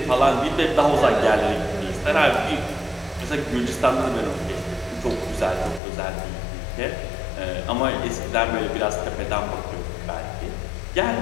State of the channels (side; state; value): right; drops out; at 5.8 s